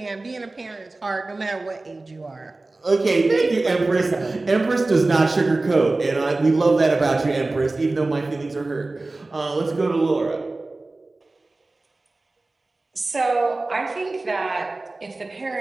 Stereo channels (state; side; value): quieter; left; 3.2 dB